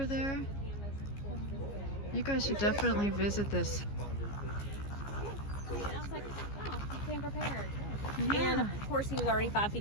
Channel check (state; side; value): late; right; 15 ms